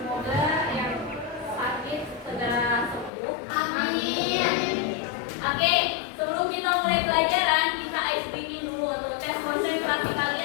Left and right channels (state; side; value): drops out; right; at 3.1 s